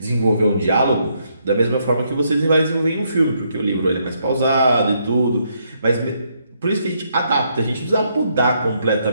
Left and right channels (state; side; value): inverted; both; correlation -0.75